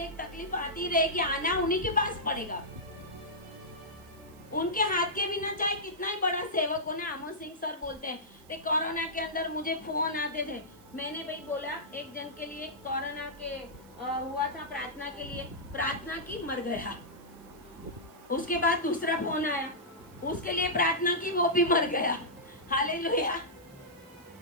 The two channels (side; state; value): right; noise; hiss, 26 dB below the sound